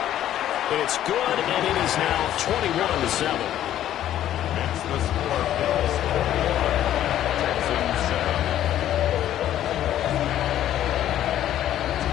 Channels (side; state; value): right; quieter; 11.9 dB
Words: It's good, and it is now 21-7. It's the score. Bills 41, Texans 7.